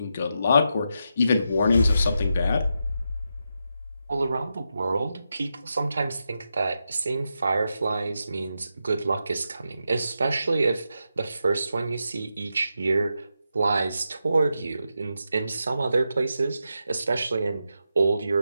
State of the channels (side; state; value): both; inverted; correlation -0.86